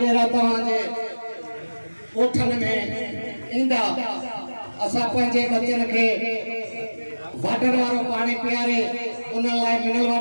तव्हांजे ॻोठनि में ईंदा। असां पंहिंजे बचनि खे वाटर वारो पानी पियारे उन लाइ मिनरल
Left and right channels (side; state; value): both; inverted; correlation -1.00